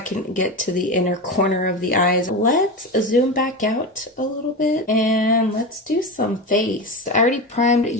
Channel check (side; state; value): both; normal; correlation 0.22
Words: get to the inner corner of the eyes. Let's zoom back out a little bit and let's do some face. I already primed